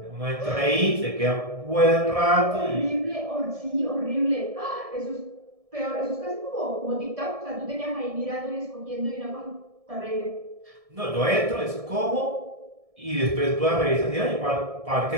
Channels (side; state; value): left; late; 1.7 ms